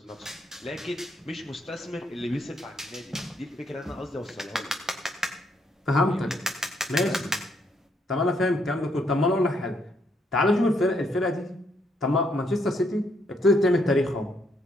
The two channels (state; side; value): normal; both; correlation 0.73